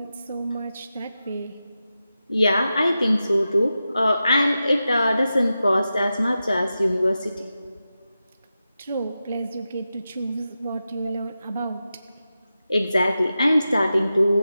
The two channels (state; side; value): inverted; both; correlation -0.91